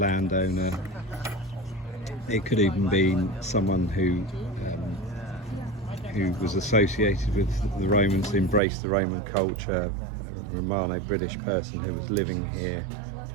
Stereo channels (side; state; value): left; drops out; at 8.6 s